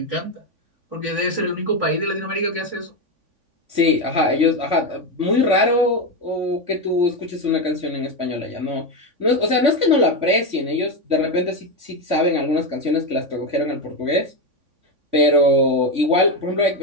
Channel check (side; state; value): left; late; 3.5 ms